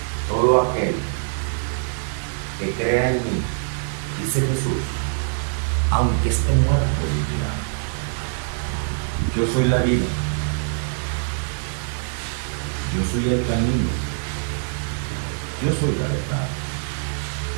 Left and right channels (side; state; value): left; silent; 56 dB below the other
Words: Todo aquel que crea en mí, dice Jesús, aunque esté muerto, vivirá. Yo soy la vida. Yo soy el camino. Yo soy la verdad.